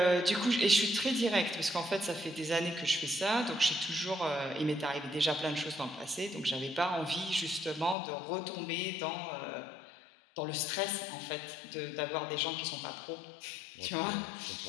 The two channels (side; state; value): right; drops out; at 8.0 s